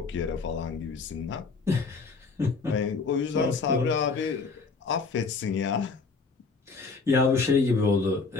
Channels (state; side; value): quieter; right; 4.5 dB